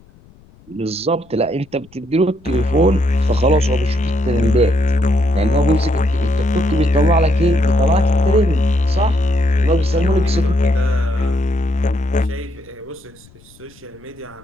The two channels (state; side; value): noise; left; rumble, 27 dB below the sound